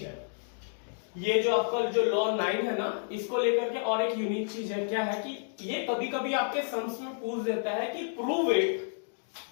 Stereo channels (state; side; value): silent; right; digital silence